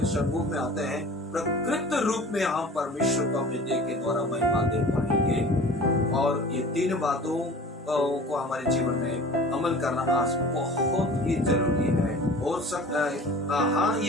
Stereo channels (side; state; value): both; normal; correlation 0.42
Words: सम्मुख में आते हैं, प्रकृत रूप में हम परमेश्वर को अपने देह के द्वारा महिमा दे पाएंगे। और ये 3 बातों को हमारे जीवन में अमल करना आज बहुत ही जरूरी है। हो सकता है हाँ,